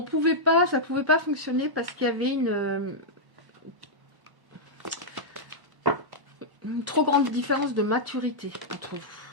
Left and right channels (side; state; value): left; late; 1.1 ms